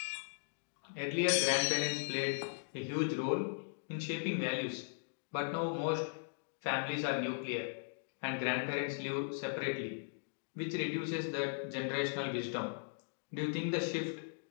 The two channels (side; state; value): right; silent; digital silence